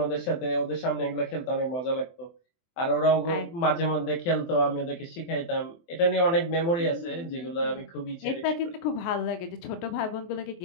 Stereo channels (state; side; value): late; right; 24 ms